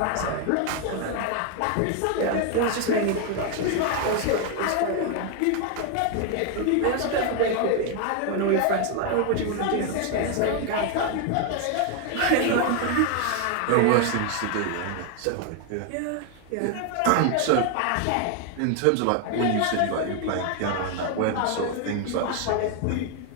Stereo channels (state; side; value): different; both; correlation 0.01